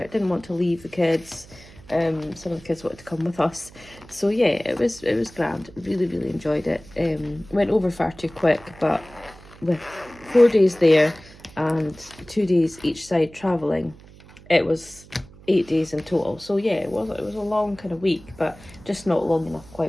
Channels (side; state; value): right; noise; hum, 22 dB below the sound